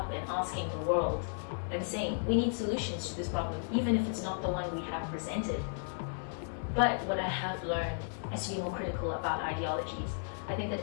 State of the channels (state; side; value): silent; right; digital silence